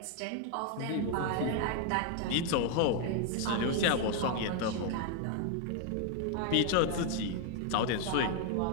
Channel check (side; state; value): both; different; correlation 0.00